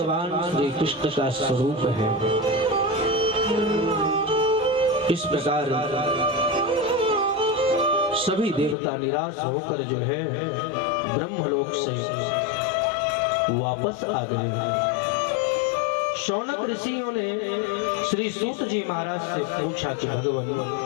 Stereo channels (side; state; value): right; drops out; at 8.8 s